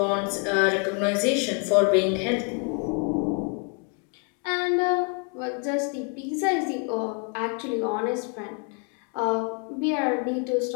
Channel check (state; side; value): quieter; right; 36.8 dB